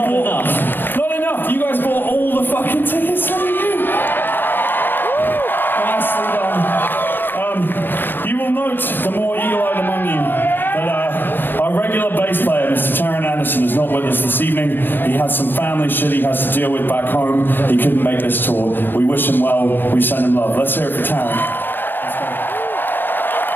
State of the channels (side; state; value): right; late; 0.094 ms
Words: enough. You guys bought all the fucking tickets. Look at you. You will note, the more eagle-eyed among you, that our regular bass player, Mr. Taron Anderson, is not with us this evening. He has some family shit he has to deal with back home. He couldn't make this tour. We wish him well. We send him love. Let's hear it for Taron.